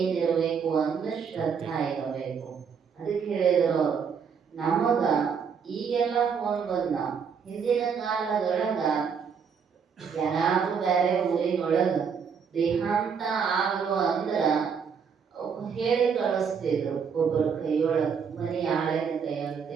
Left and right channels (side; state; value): left; quieter; 6.5 dB